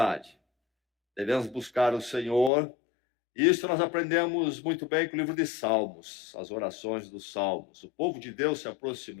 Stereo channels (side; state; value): right; drops out; at 2.5 s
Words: Devemos buscar o Senhor. Isso nós aprendemos muito bem com o livro de Salmos, as orações dos Salmos. O povo de Deus se